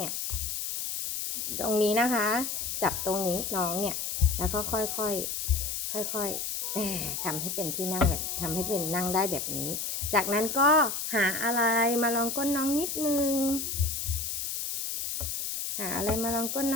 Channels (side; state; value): left; noise; hiss, 3 dB below the sound